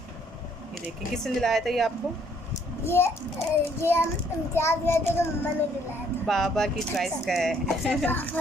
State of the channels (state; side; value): normal; both; correlation 0.65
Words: ये देखिए, किसने दिलाया था ये आपको? ये हम इम्तियाज गए थे तो मम्मा ने दिलाया था। बाबा की चॉइस का है।